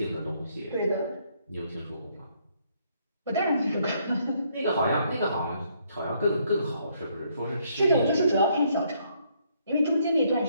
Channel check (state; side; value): inverted; both; correlation -0.70